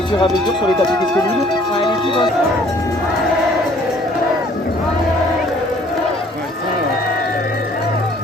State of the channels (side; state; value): both; normal; correlation 0.57